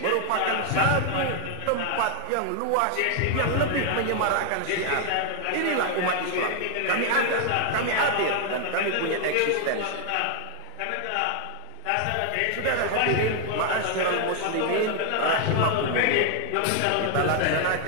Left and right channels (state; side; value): different; both; correlation 0.00